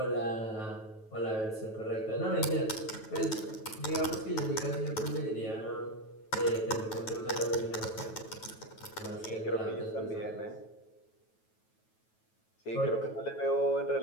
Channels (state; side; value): late; right; 9.2 ms